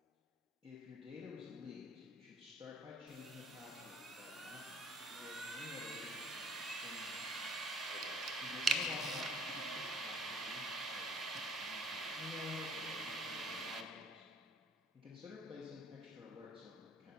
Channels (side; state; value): both; normal; correlation 0.56